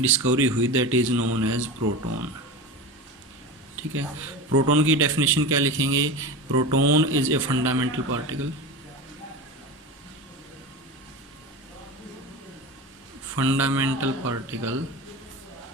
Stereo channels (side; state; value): both; normal; correlation 0.27